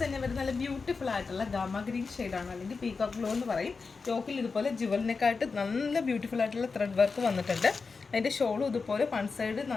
തന്നെ വരുന്ന നല്ല ബ്യൂട്ടിഫുൾ ആയിട്ടുള്ള ഗാമ ഗ്രീൻ ഷെയ്ഡാണ്, അല്ലെങ്കിൽ പീകോക്ക് ബ്ലൂ എന്ന് പറയും. യോക്കിൽ ഇതുപോലെ ജുവലിനെക്കായിട്ട് നല്ല ബ്യൂട്ടിഫുൾ ആയിട്ടുള്ള ത്രെഡ് വർക്ക് വന്നിട്ടുണ്ട്. അതിൻ്റെ ഷോളും ഇതുപോലെ വൺ സൈഡ്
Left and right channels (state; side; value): quieter; right; 4.6 dB